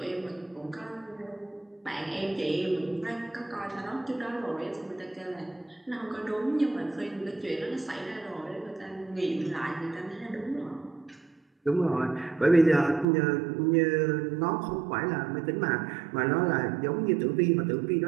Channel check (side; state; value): left; drops out; at 13.1 s